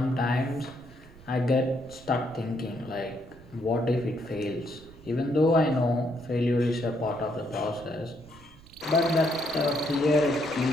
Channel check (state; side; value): noise; right; rumble, 22 dB below the sound